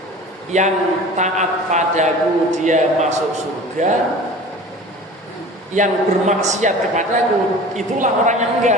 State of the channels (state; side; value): normal; both; correlation 0.40